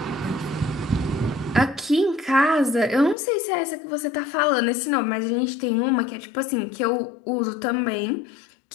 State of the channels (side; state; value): right; drops out; at 3.2 s